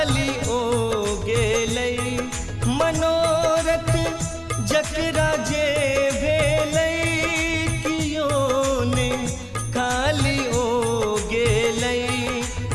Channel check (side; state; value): both; identical; correlation 1.00